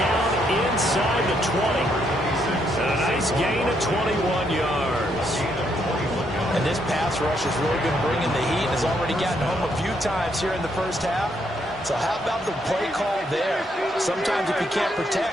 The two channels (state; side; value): normal; both; correlation 0.74